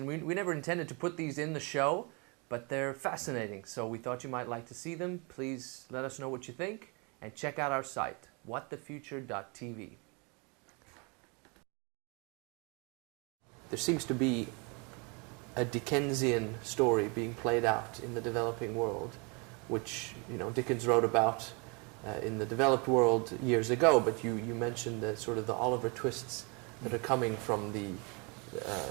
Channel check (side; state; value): left; quieter; 31.9 dB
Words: we never intended to put these in the show, but they're fascinating, so we thought you might like to see them. Please let us know what you think, and check out our site, whatthefuture.tv. There seems to be a Dickensian story being played out in the developing world, which Dickens wrote about in the developed world years ago, but you mentioned the sort of the Oliver twists that are coming from the